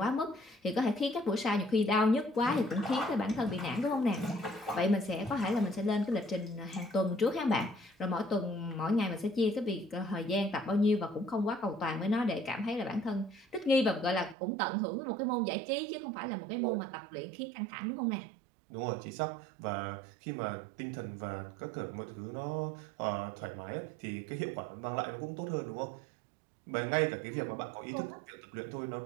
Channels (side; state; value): left; drops out; at 14.4 s